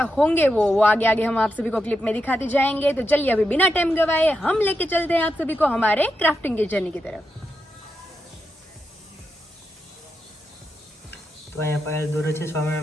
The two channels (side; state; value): both; normal; correlation 0.86